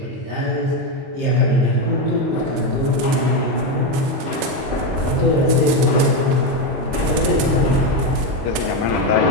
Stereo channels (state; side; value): late; left; 22 ms